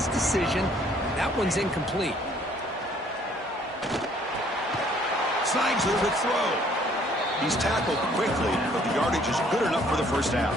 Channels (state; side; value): normal; both; correlation 0.61